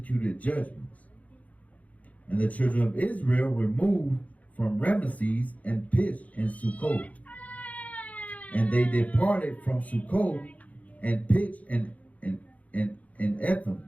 judgments. And the children of Israel removed from Ramesses and pitched in Succoth. And they departed from Succoth and pitched in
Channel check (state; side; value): late; right; 0.070 ms